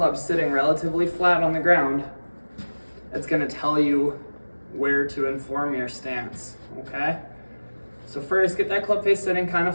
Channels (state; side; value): inverted; both; correlation -1.00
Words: sitting relatively flat on the ground, it's gonna tell you where to inform your stance, okay? So first, get that club face sitting kind